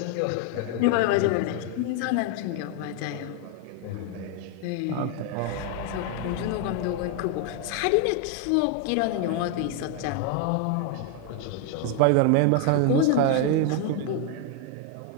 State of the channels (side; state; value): both; different; correlation 0.00